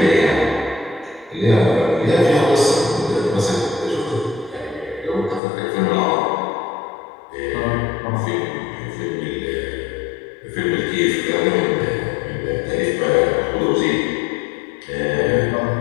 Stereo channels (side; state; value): right; drops out; at 5.4 s